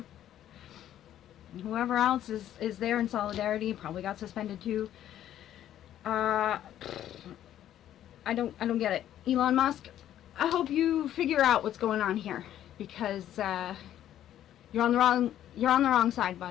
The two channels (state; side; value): quieter; right; 11.6 dB